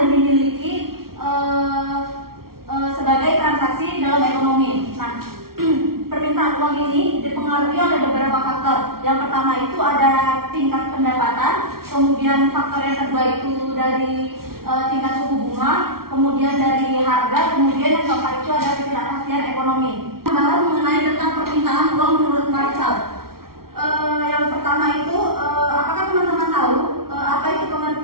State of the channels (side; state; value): left; late; 0.94 ms